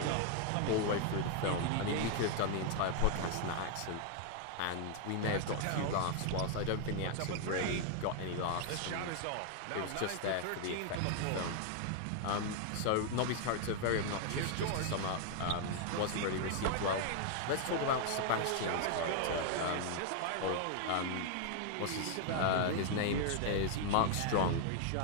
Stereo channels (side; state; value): both; different; correlation 0.00